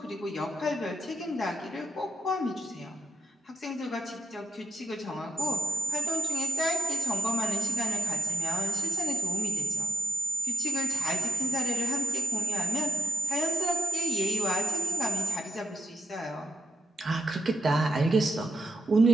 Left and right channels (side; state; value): both; normal; correlation 0.74